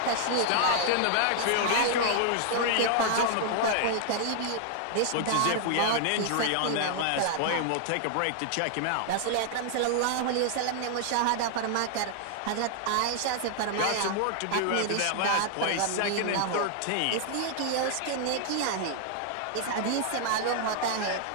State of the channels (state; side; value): different; both; correlation -0.01